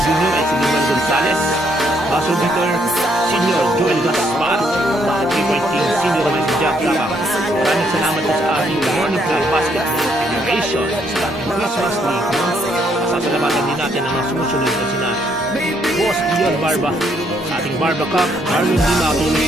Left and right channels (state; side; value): normal; both; correlation 0.71